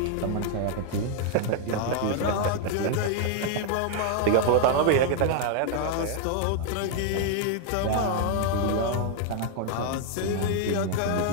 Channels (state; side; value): different; both; correlation 0.00